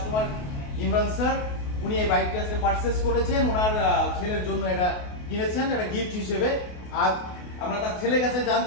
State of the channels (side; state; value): right; late; 28 ms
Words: ইমরান স্যার, উনি এই বাইকটা আজকে পারচেজ করেছেন, ওনার ছেলের জন্য এটা কিনেছেন, এটা গিফট হিসেবে। আজ আমরা তার ছেলের কাছে